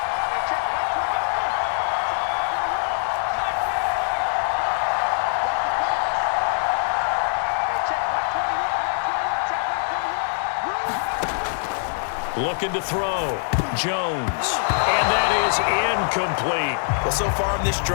Looking to throw. Jones. And that is incomplete. Well, so far in this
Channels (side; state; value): right; silent; digital silence